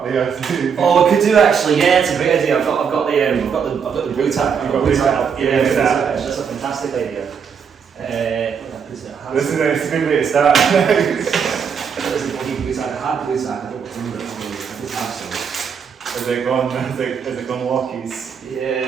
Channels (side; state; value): left; quieter; 6.8 dB